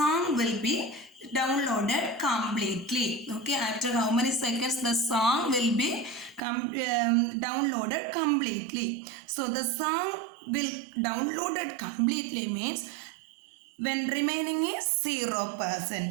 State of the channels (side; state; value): left; drops out; at 6.4 s